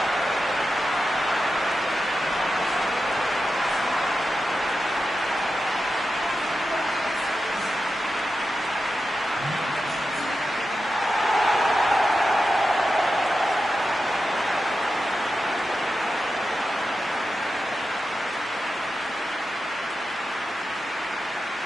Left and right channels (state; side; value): normal; both; correlation 0.90